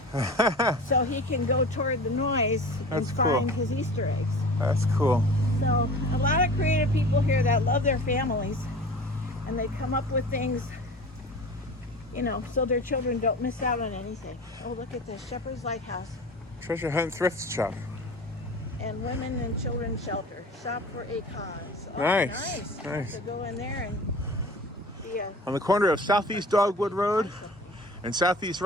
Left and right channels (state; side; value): normal; both; correlation 0.38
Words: so he can go toward the noise and That's find cool. his Easter eggs. That's cool. So a lot of creative people here that love their families, and they come up with things, you know, so their children don't miss out on anything. Oh, look at this, Shepherd's Lighthouse. Treasure Hunt Thrift Shop. And Women and Children's Shelter. Shop for a cause. Oh, Nice, nice. So go in there and be a... On the corner of Southeast Dogwood Road and Southeast